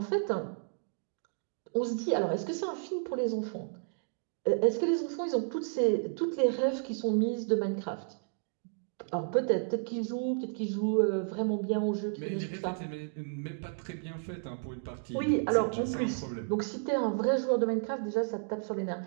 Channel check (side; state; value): left; silent; digital silence